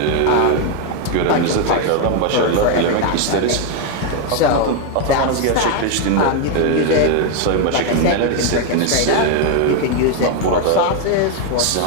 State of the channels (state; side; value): different; both; correlation 0.01